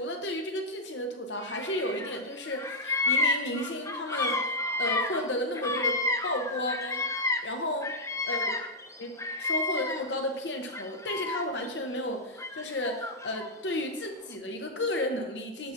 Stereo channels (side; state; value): both; normal; correlation -0.04